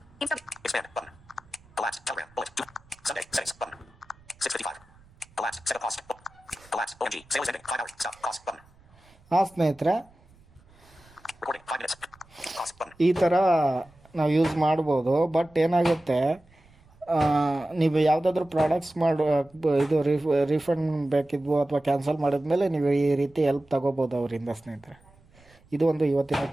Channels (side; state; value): right; noise; rumble, 28 dB below the sound